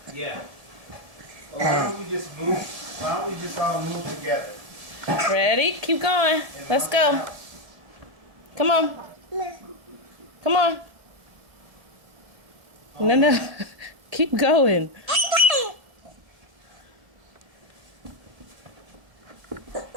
Yeah. Well, why don't we just move? Why don't we just all move together? Ready? Keep going. Let's go. Come on. Come on. No, no. Keep going.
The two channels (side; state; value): left; late; 1.8 ms